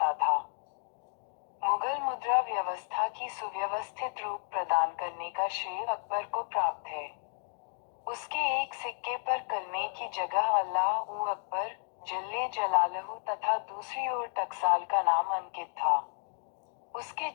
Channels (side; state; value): right; silent; 56 dB below the other